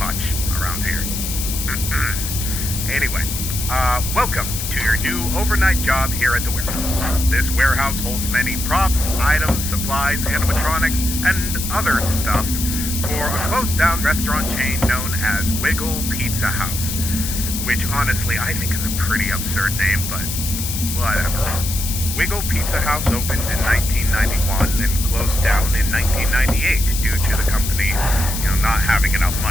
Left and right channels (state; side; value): noise; left; hiss, 5 dB below the sound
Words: around here. Anyway, welcome to your new overnight job here at the warehouse. This warehouse holds many props, items, supplies, animatronics, and other stuff for a closed-down restaurant chain known as Wiggle Pizza House, which honestly I think is a pretty absurd name, but whatever. Wiggle Pizza House opened in 1991 and closed down in 1998 due to the company, not having enough